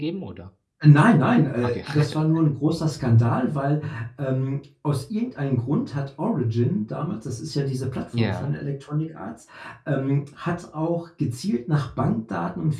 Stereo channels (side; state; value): both; identical; correlation 1.00